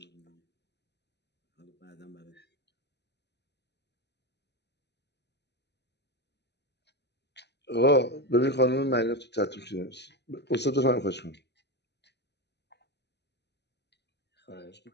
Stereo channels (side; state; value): right; late; 0.50 ms